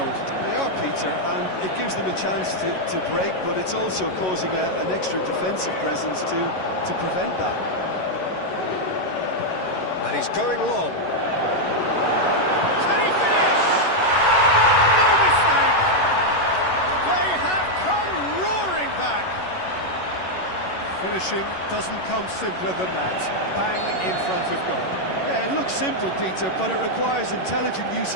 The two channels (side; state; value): right; late; 11 ms